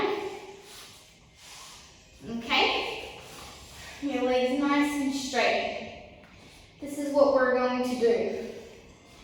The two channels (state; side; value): identical; both; correlation 1.00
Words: Okay? Your legs nice and straight. This is what we're going to do.